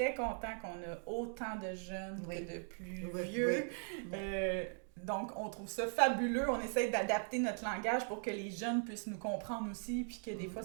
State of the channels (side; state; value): left; silent; 51 dB below the other